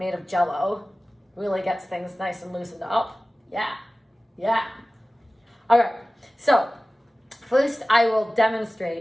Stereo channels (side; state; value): both; normal; correlation 0.97